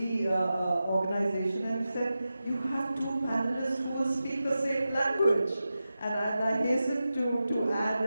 organization, and said, you have 2 panelists who will speak the same language. And I hasten to add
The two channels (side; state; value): both; inverted; correlation -0.92